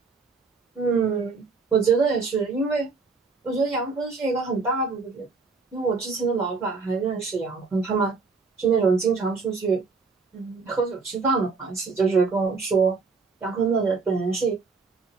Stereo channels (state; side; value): quieter; left; 4.5 dB